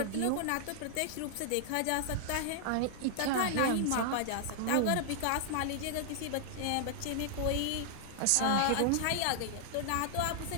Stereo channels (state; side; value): different; both; correlation -0.01